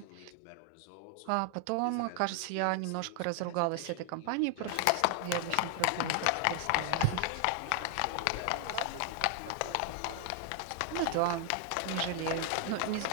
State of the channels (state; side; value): different; both; correlation 0.00